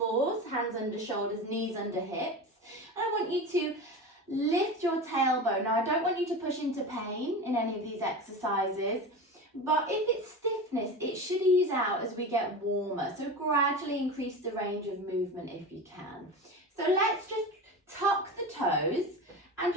hands under shoulders, knees under hips. And I want you to lift your tailbone. Now, I don't want you to push into pain in any of these exercises, but if it's stiffness, it should ease out as we get warmer. So gradually increase the range of movement if you can. So let's just tuck the toes and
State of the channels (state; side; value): normal; both; correlation 0.27